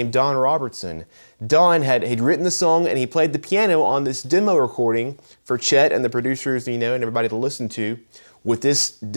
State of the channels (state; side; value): inverted; both; correlation -1.00